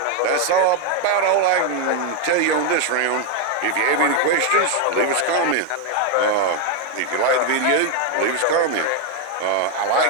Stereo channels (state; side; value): different; both; correlation 0.01